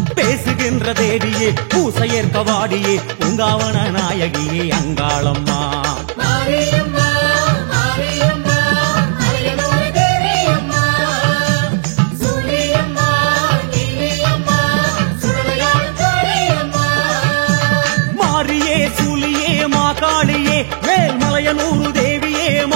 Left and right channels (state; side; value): silent; left; digital silence